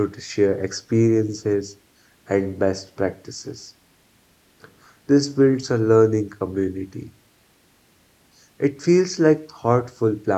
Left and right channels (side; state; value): both; identical; correlation 1.00